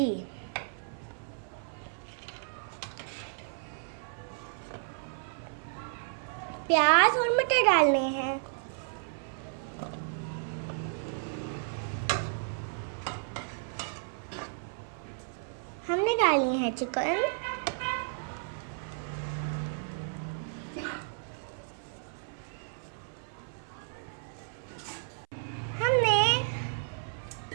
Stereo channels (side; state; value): left; silent; 56 dB below the other